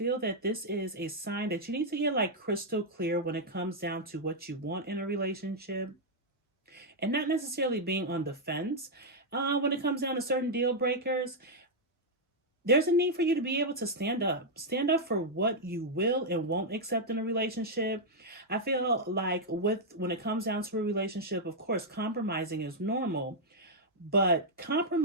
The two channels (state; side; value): normal; both; correlation -0.04